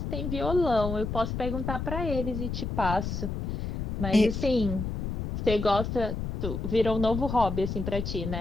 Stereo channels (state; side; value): noise; left; rumble, 3 dB below the sound